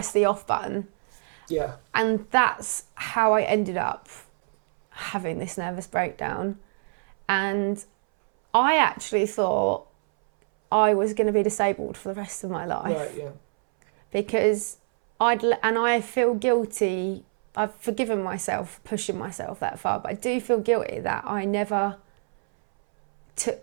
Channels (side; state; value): left; silent; 61 dB below the other